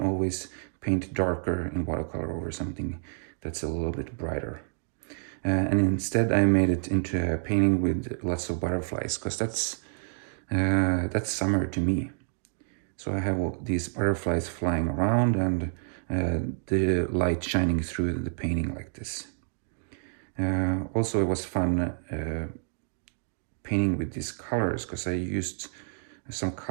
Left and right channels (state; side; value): silent; left; digital silence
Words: paint darker in watercolor over something that's a little bit brighter. And instead I made it into a painting with lots of butterflies, because that's summer to me. So I have all these butterflies flying around and the light shining through the painting like this. Also, it was fun painting with these colors, because I used some